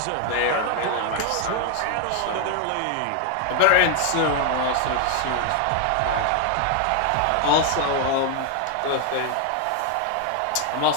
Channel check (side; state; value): both; different; correlation 0.01